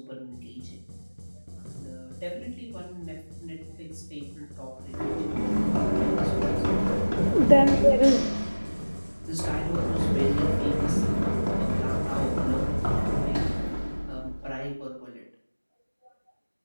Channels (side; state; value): both; inverted; correlation -1.00